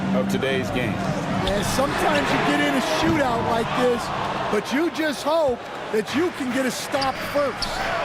of today's game. Yeah, sometimes you get in a shootout like this, but you just hope that you can get a stop first.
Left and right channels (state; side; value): identical; both; correlation 1.00